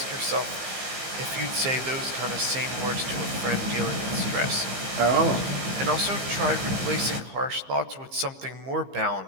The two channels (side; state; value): left; late; 15 ms